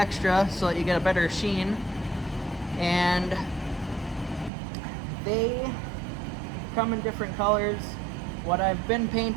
so that you get a better sheen. And they come in different colors. What I've been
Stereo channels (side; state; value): left; drops out; at 4.5 s